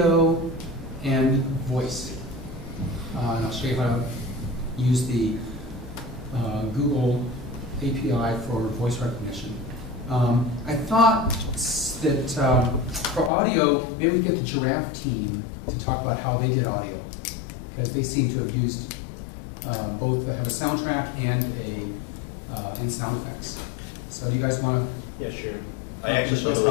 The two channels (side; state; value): right; drops out; at 13.3 s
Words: and voice. And I'll show you how to use the Google API for voice recognition. I thought that for audio, maybe we could get the giraffe team to talk about how they did audio, because they seem to have used both have a soundtrack and sound effects. So do you guys want to? Yeah, sure. I I actually actually